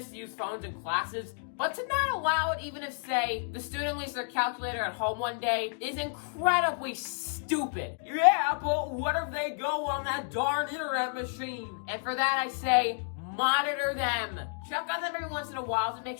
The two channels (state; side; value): silent; right; 57 dB below the other